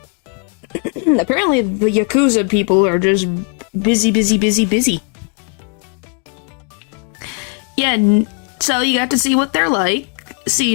Apparently the Yakuza people are just busy, busy, busy, busy. Yeah, so you got to see what they're like, see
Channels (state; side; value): quieter; right; 38.1 dB